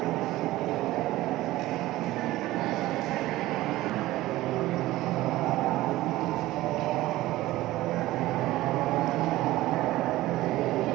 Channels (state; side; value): quieter; left; 16.9 dB